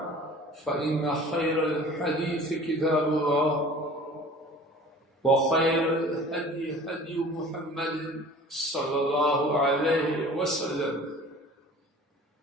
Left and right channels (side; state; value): both; normal; correlation 0.44